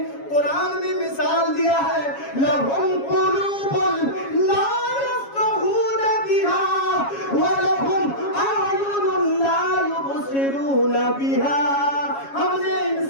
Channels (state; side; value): late; right; 7.3 ms